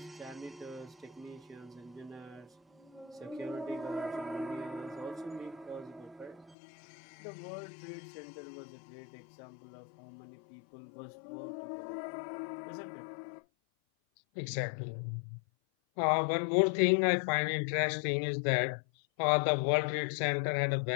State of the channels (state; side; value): drops out; right; at 6.6 s